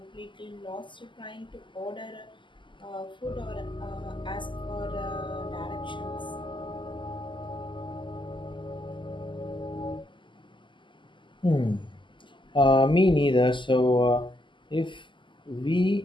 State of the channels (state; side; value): late; right; 0.24 ms